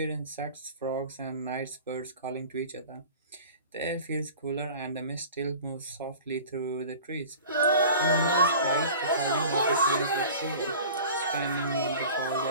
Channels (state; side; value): inverted; both; correlation -0.41